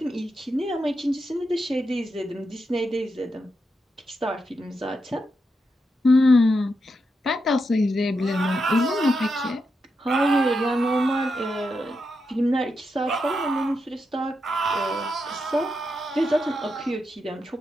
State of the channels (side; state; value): both; normal; correlation 0.85